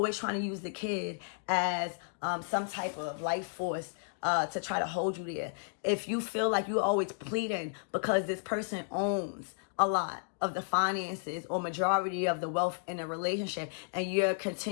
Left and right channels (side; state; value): right; silent; digital silence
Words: trying to use the kid as some type of life force to try to hold you there. If you feel like you're always pleading because this person owns a lot of the finances or majority of the wealth in a relationship and you're